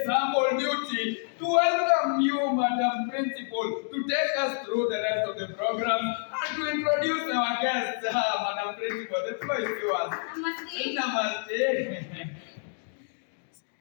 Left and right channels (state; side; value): silent; right; digital silence